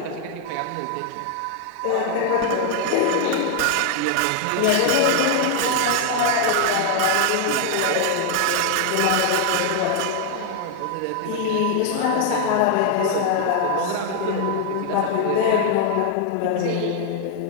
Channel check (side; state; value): both; different; correlation 0.00